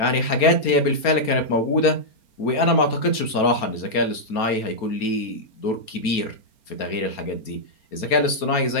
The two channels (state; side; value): late; right; 4.3 ms